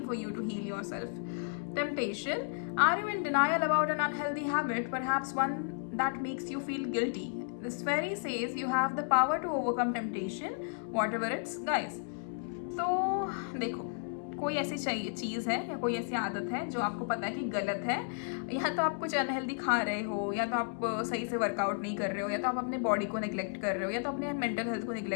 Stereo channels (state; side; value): silent; right; 56 dB below the other